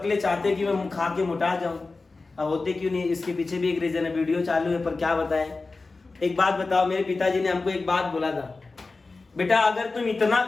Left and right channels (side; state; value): right; quieter; 3.7 dB